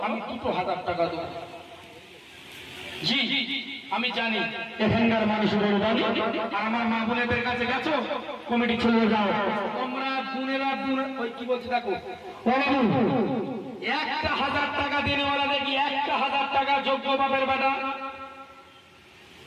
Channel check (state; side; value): identical; both; correlation 1.00